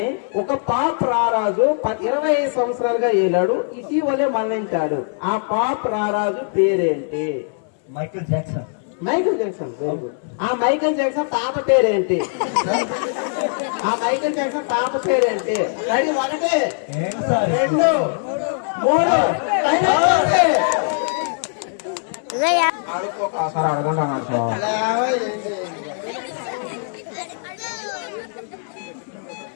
ఒక పాప్ రారాజు 25 సంవత్సరాలుగా ఏలాడు, ఇటీవలే మరణించాడు. ఆ పాప్ రారాజు పేరేంటి? Michael Jackson. Michael Jackson. ఆ మైకేల్ జాక్సన్ తాత పేరేంటి? ఆ మైకేల్ జాక్సన్ తాత పేరేంటి? రెడీ 1 2 3 అడుక్కోసారి అడగండి సార్.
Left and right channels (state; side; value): silent; right; 65 dB below the other